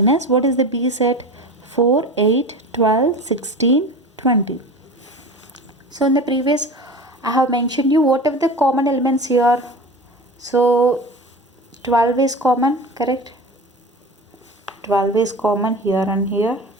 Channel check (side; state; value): both; normal; correlation 0.33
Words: what is the B set 4, 8, 12, 16, 20. So in the previous I have mentioned you what are the common elements here. So 12 is common, correct? 12 is common here and here.